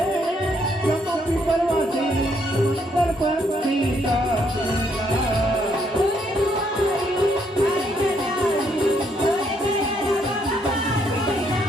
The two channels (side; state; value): both; normal; correlation 0.72